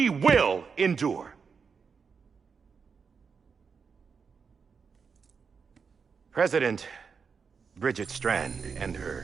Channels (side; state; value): left; quieter; 5.7 dB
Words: will endure. President Bridget Strand and her